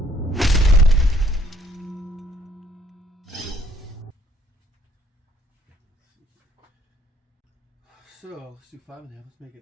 So let's do 5.5. Let's make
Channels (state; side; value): normal; both; correlation 0.63